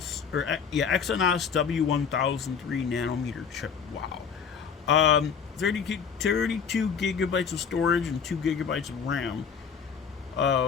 W1003 nanometer chip. Wow. 32 gigabytes of storage and 2 gigabytes of RAM.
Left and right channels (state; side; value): quieter; right; 6.7 dB